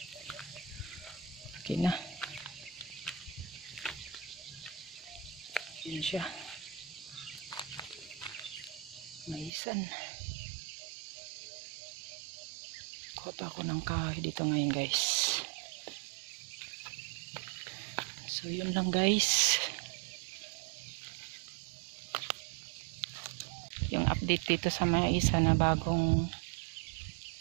Okay na. Yan siya. Maisan. Kuha pa ako ng kahoy dito ngayon guys. So yun lang guys. Yung update dito sa maisa na bagong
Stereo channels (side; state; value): left; drops out; at 9.5 s